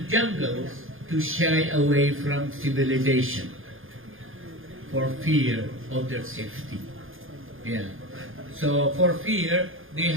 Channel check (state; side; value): late; left; 0.59 ms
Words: jungles to shy away from civilization for fear of their safety. Yeah. So for fear, they